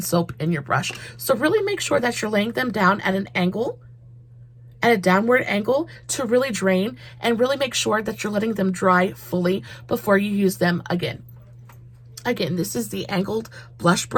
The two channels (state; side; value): identical; both; correlation 1.00